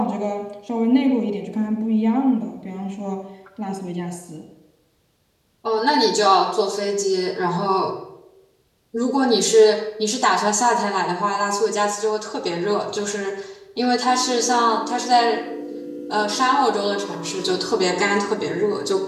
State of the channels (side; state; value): both; identical; correlation 1.00